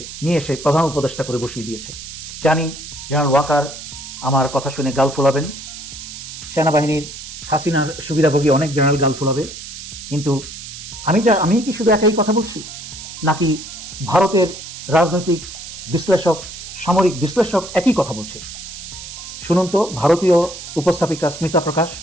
এসে প্রধান উপদেষ্টা করে বসিয়ে দিয়েছে। জানি জেনারেল ওয়াকার আমার কথা শুনে গাল ফোলাবেন, সেনাবাহিনীর হাসিনার সুবিধাভোগী অনেক জেনারেল গাল ফোলাবে, কিন্তু আমি কি শুধু একাই কথা বলছি নাকি ভারতের রাজনৈতিক বিশ্লেষক, সামরিক বিশ্লেষক একই কথা বলছে? শুনুন তো ভারতীয় উপস্থাপিকা স্মিতা প্রকাশ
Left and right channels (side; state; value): right; noise; hiss, 11 dB below the sound